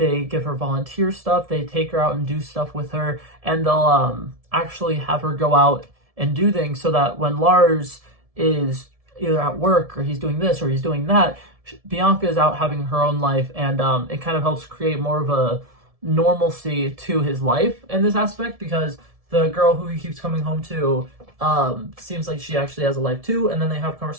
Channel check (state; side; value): late; left; 1.7 ms